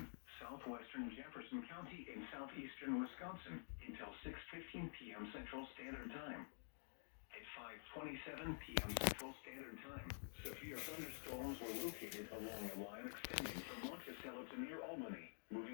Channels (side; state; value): right; silent; digital silence